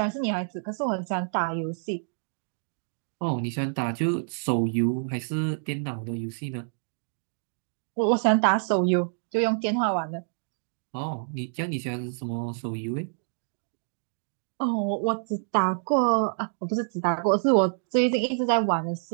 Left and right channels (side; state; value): left; silent; digital silence